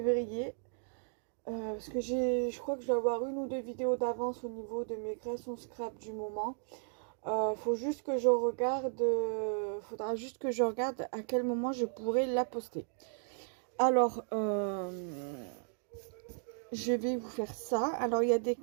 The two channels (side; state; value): left; silent; digital silence